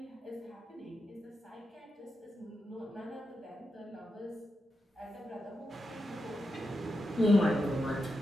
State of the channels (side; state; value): both; normal; correlation 0.87